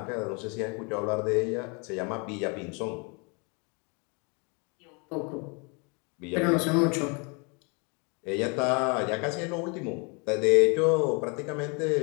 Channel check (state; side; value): quieter; right; 32.8 dB